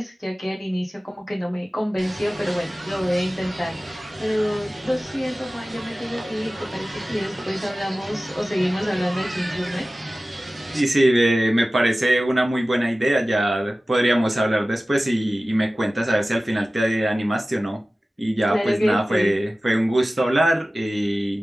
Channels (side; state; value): both; normal; correlation 0.97